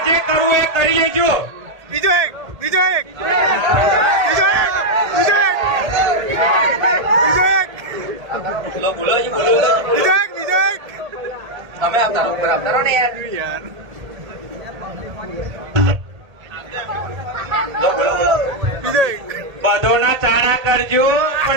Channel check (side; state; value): left; late; 1.8 ms